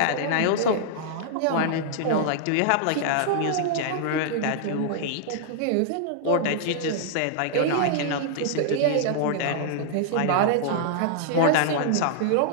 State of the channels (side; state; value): both; different; correlation -0.01